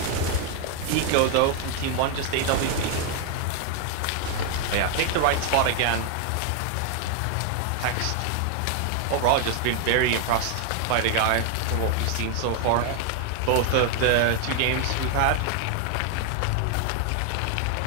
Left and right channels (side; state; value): both; different; correlation 0.00